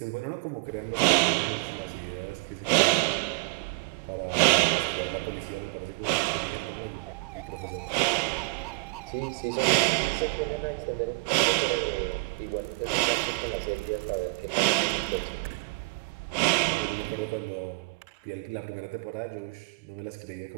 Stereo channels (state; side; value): quieter; left; 28.7 dB